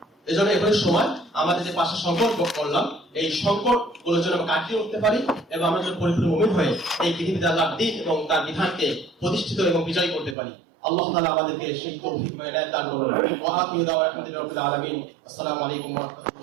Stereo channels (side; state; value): left; drops out; at 10.4 s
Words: এই জন্য এখনই সময় আমাদের যে 5টা সংকট করলাম, এই সংকট গুলোর জন্য আমরা কাটিয়ে উঠতে পারি এবং আমরা যেন পরিপূর্ণ মুমিন হয়ে এই পৃথিবীতে আল্লাহর দ্বীন এবং তার বিধানকে প্রতিষ্ঠিত এবং বিজয়ী করতে পারি। আল্লাহ তাআলা আমাদেরকে সেই তৌফিক এবং ইনায়াত দান করুন। ওয়া আখিরু দাওয়ানা আলহামদুলিল্লাহি রাব্বিল আলামিন। আসসালামু আলাইকুম ওয়া